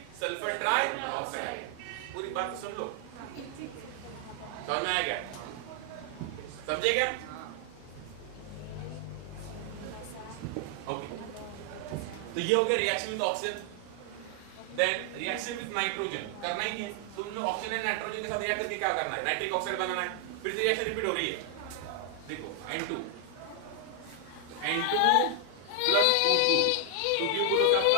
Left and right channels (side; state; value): both; different; correlation 0.00